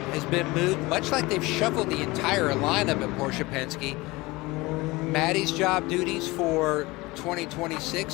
has been moved, much like they've shuffled the entire lineup at Porsche Penske. Maddie's job duties for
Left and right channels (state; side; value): quieter; right; 21.9 dB